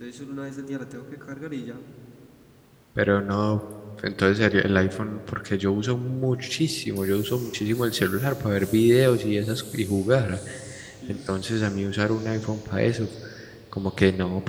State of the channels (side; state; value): both; identical; correlation 1.00